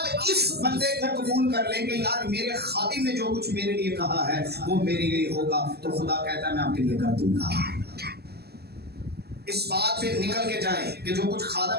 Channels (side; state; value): left; late; 0.46 ms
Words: इस बंदे को कबूल कर लेंगे, यार मेरे खादिम ने जो कुछ मेरे लिए कहा है वो मेरे लिए होगा, तो खुदा कहता है मैं आपके लिए कर दूंगा। इस बात पे निकल के जाएं कि जो कुछ